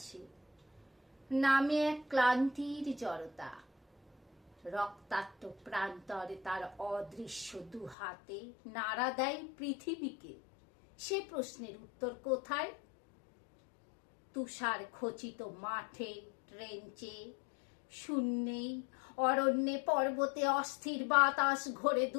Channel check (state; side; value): drops out; right; at 8.0 s